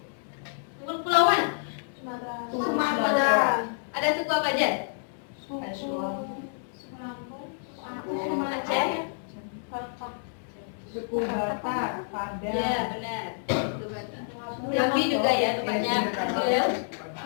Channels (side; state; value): right; silent; digital silence